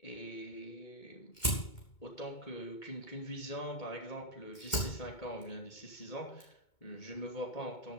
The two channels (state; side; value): late; right; 2.2 ms